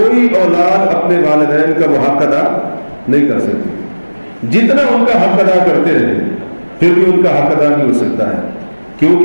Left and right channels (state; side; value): inverted; both; correlation -1.00